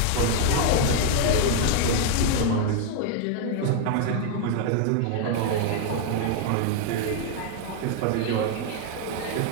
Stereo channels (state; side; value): different; both; correlation 0.00